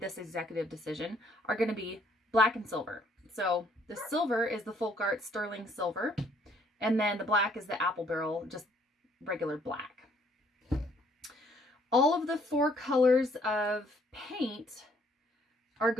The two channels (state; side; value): normal; both; correlation 0.65